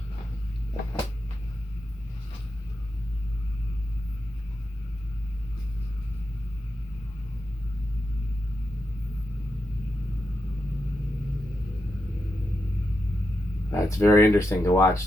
It's very interesting to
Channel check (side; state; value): both; normal; correlation 0.86